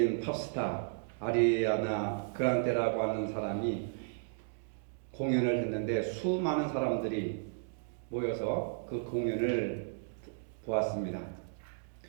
팝스타 아리아나 그란데라고 하는 사람이 공연을 했는데 수많은 사람들이 모여서 그 공연을 보았습니다.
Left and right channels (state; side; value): silent; left; digital silence